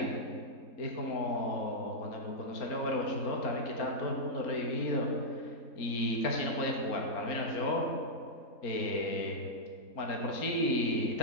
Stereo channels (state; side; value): late; right; 4.3 ms